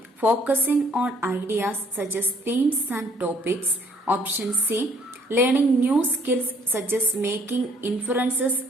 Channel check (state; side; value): normal; both; correlation 0.63